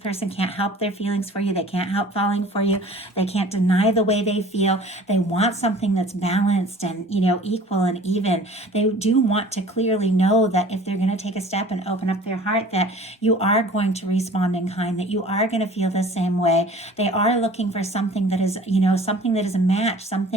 can't help their feelings for you. They can't help falling for you. They can't deny the way they feel. They want something that's balanced and, equal and even. They do want to clearly know that if they're going to take a step and open up their heart, that you are going to respond in kind, that you are going to feel the same way. They are looking for something that is, something that is a match,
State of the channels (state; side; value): normal; both; correlation 0.46